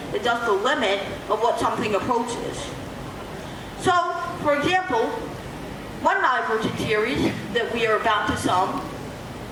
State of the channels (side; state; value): both; identical; correlation 1.00